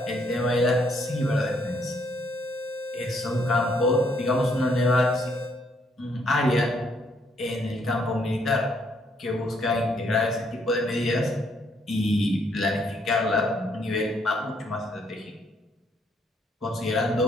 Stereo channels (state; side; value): normal; both; correlation 0.70